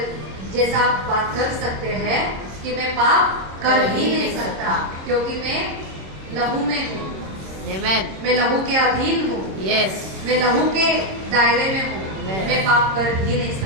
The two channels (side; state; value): left; late; 26 ms